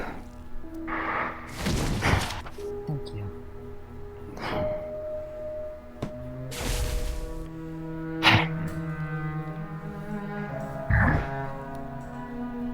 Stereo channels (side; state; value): both; identical; correlation 1.00